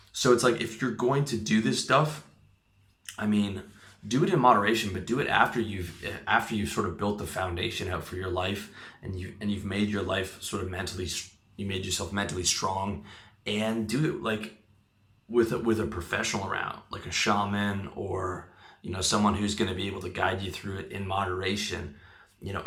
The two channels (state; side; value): identical; both; correlation 1.00